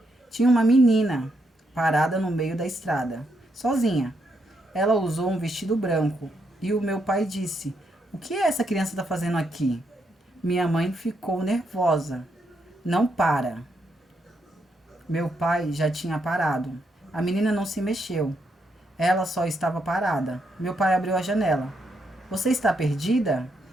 Tinha uma menina parada no meio da estrada, sozinha. Ela usou um vestido branco e o meu pai disse: O que essa criança está fazendo aqui? Minha mãe ficou nervosa. Não para. Meu pai já tinha parado. A menina não se mexeu. Ela só estava parada. Meu pai abriu a janela. Você está perdida?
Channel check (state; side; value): normal; both; correlation 0.79